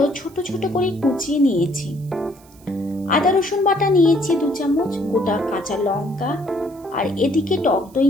ছোট ছোট করে কুচিয়ে নিয়েছি। আদা রসুন বাটা নিয়েছি 2 চামচ, গোটা কাঁচা লঙ্কা, আর এদিকে টক দই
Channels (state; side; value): noise; right; hiss, 27 dB below the sound